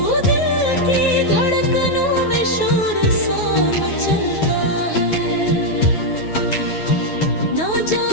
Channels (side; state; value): right; late; 9.4 ms